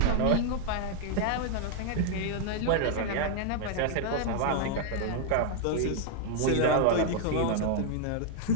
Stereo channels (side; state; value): both; different; correlation 0.00